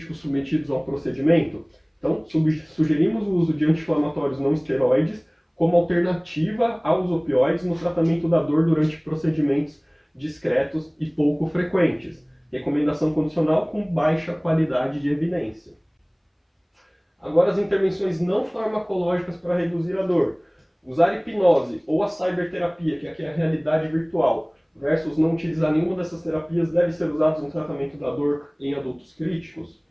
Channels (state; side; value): identical; both; correlation 1.00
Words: submetidos a um procedimento? Então, sugerimos o uso de anti-inflamatórios não esteroides como alternativa aos opioides no tratamento da dor durante procedimentos discretos e pouco frequentes. Recomendação condicional com baixa qualidade de evidência. Agora as intervenções não farmacológicas para reduzir a dor. Usar hipnose ou a cyberterapia, que aqui é a realidade virtual, versus não utilizar nenhuma dessas terapias deve ser usados no tratamento da dor em adultos críticos.